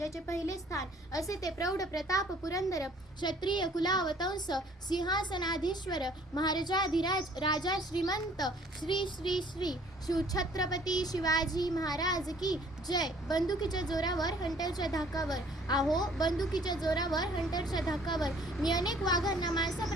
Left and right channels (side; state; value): both; normal; correlation 0.57